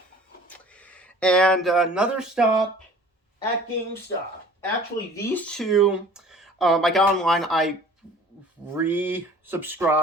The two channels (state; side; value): normal; both; correlation 0.48